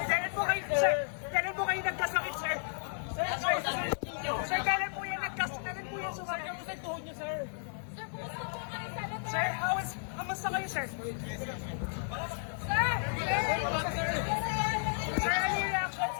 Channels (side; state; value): right; silent; digital silence